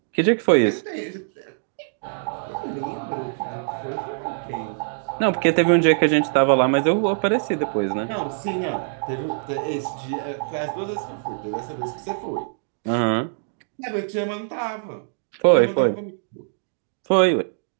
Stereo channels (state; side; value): silent; left; digital silence